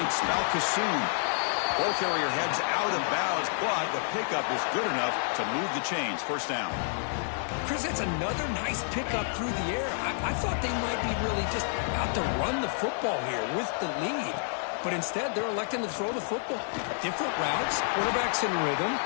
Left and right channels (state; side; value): silent; right; digital silence